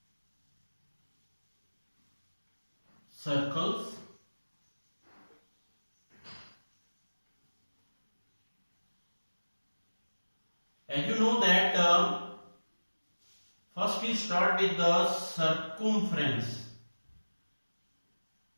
circles. As you know that first we start with the circumference.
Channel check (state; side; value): inverted; both; correlation -1.00